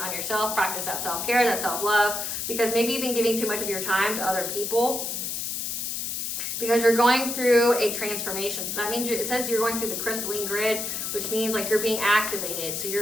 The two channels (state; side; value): noise; left; hiss, 3 dB below the sound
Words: yourself, practice that self-care, that self-love, because maybe you've been giving too much of your time to other people because you're going through a transformation. So that means it says you're going through the crystalline grid, which means like you're being activated. So